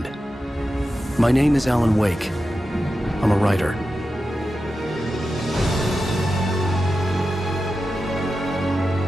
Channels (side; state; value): both; normal; correlation 0.91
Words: My name is Alan Wake. I'm a writer.